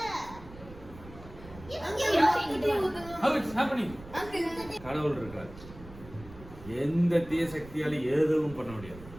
how it's happening. கடவுள் இருக்கார். எந்த தீய சக்தியால எதுவும் பண்ண முடியாது.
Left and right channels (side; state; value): right; noise; rumble, 17 dB below the sound